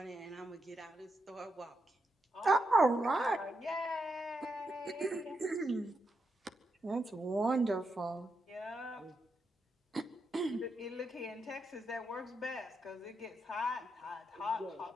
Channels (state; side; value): normal; both; correlation 0.83